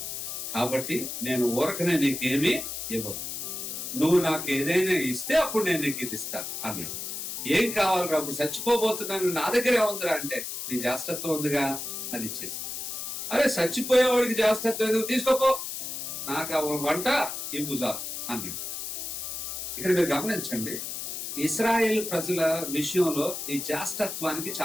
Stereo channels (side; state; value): left; noise; hiss, 6 dB below the sound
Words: కాబట్టి నేను ఊరకనే నీకేమీ ఇవ్వను. నువ్వు నాకు ఏదైనా ఇస్తే అప్పుడు నేను నీకు ఇది ఇస్తాను అన్నాడు. ఏం కావాలి? అప్పుడు చచ్చిపోబోతున్నాను, నా దగ్గరే ఉందిరా అంటే, నీ జాస్తత్వం ఉందిగా, అది ఇచ్చేసి. అరే చచ్చిపోయేవాడికి జాస్తత్వం ఎందుకు, తీసుకోపో, నాకు వంట ఇవ్వు చాలు అన్నాడు. ఇక్కడ మీరు గమనించండి, ఇశ్రాయేల్ ప్రజల విషయంలో ఈ జాస్తత్వానికి